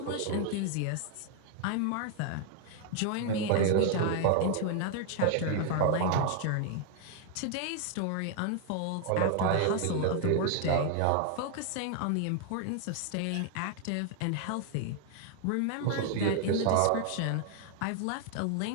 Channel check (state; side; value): different; both; correlation 0.00